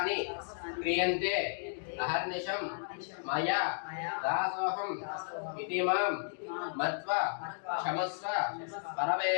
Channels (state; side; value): silent; right; digital silence